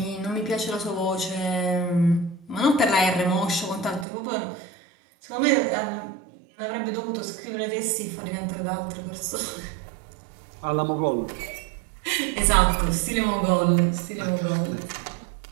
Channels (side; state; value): left; drops out; at 4.0 s